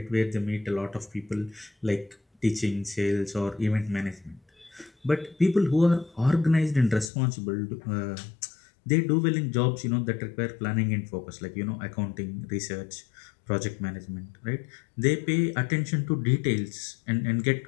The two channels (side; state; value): right; drops out; at 7.1 s